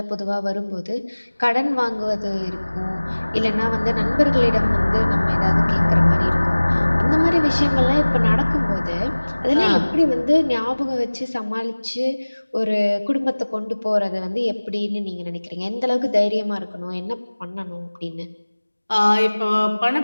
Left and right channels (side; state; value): both; inverted; correlation -1.00